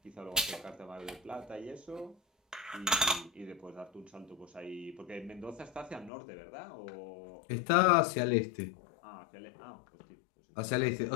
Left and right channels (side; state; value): right; drops out; at 6.1 s